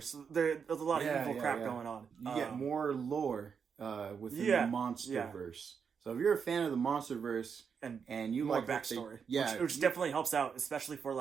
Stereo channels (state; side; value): quieter; left; 6.5 dB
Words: There's a lot of evil crap going on. You get more lore within the monsterverse. So if you're a fan of the monsterverse and you more like backstory, which definitely helps out, especially for